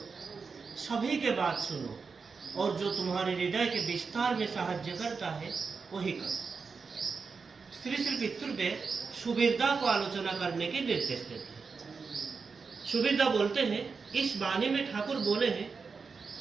सभी के बात सुनो, और जो तुम्हारे हृदय के विस्तार में साहाय्य करता है वही करो। श्री श्री पितृदेव सुबीरदा को आलोचना करने के निर्देश देते हैं। सुबीरदा बोलते हैं, इस वाणी में ठाकुर बोले हैं,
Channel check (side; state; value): left; quieter; 5.0 dB